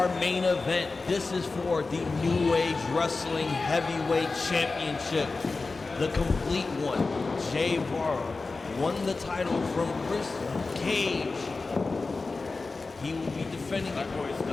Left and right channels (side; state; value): right; quieter; 3.8 dB